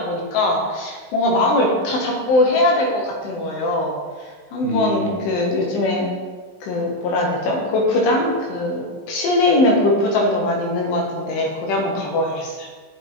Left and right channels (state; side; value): late; right; 16 ms